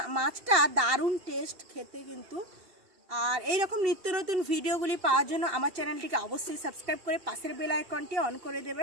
মাছটা দারুণ টেস্ট খেতে কিন্তু। আর এই রকম নিত্য নতুন ভিডিওগুলি পাওয়ার জন্য আমার চ্যানেলটিকে অবশ্যই সাবস্ক্রাইব করে পাশের বেল আইকনটি অন করে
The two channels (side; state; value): left; late; 2.7 ms